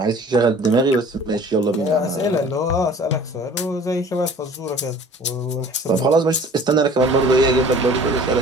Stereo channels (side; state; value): both; normal; correlation 0.47